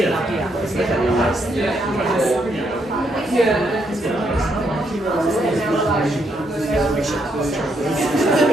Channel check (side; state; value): both; normal; correlation 0.76